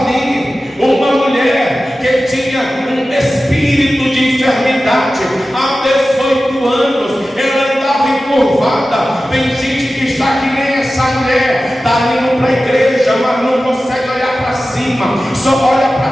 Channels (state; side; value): normal; both; correlation 0.95